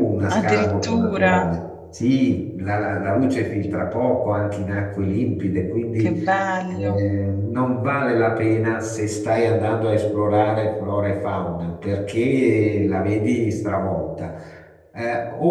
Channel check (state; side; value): identical; both; correlation 1.00